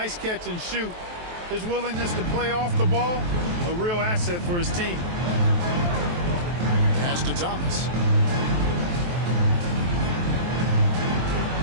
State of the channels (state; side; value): late; left; 23 ms